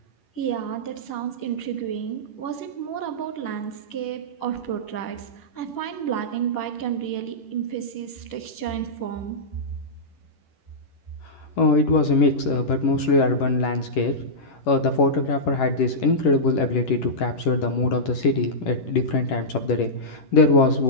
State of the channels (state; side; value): late; right; 11 ms